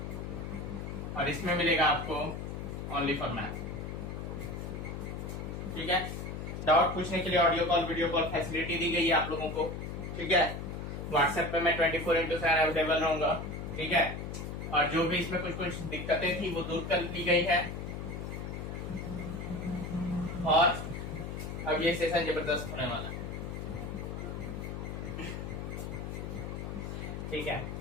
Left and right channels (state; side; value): noise; left; hum, 6 dB below the sound